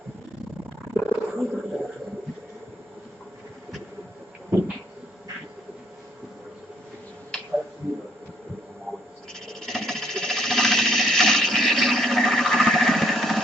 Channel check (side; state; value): both; normal; correlation 0.68